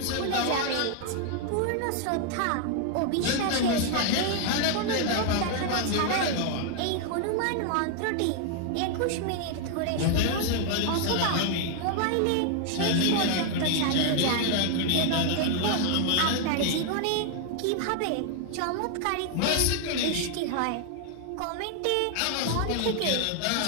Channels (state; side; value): different; both; correlation 0.00